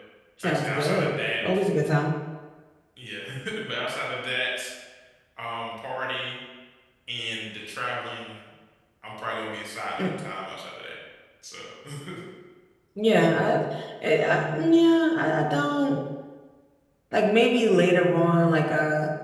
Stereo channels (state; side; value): identical; both; correlation 1.00